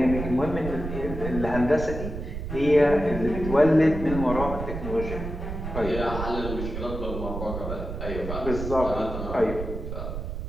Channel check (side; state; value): right; noise; rumble, 6 dB below the sound